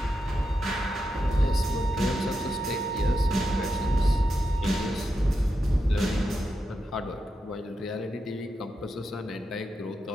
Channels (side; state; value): both; normal; correlation 0.87